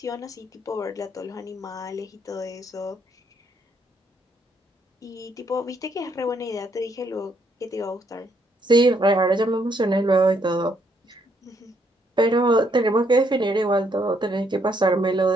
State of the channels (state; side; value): normal; both; correlation 0.72